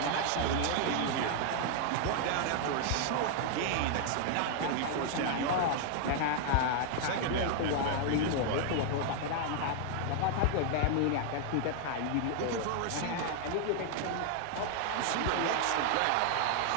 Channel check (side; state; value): both; different; correlation 0.00